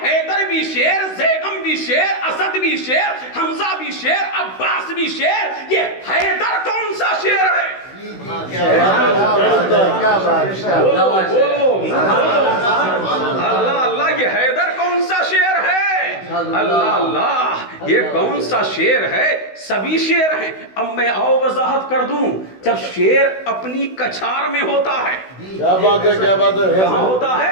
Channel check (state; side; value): late; right; 16 ms